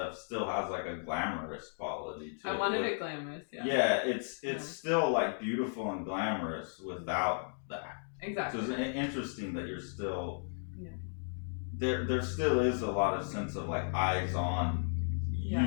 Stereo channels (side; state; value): right; silent; digital silence